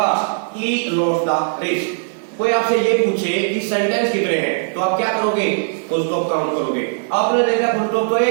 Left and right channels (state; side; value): silent; left; 59 dB below the other